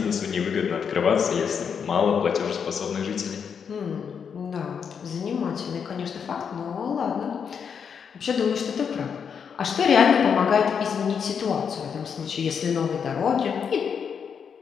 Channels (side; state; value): right; quieter; 6.9 dB